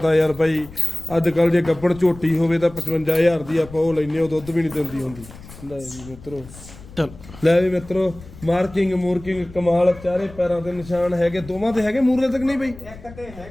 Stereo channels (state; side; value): noise; left; rumble, 18 dB below the sound